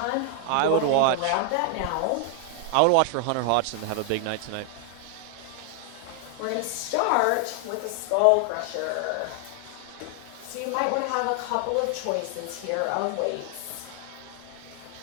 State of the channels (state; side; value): different; both; correlation 0.00